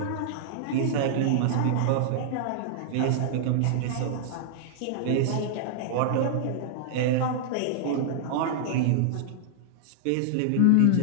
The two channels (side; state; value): both; different; correlation -0.01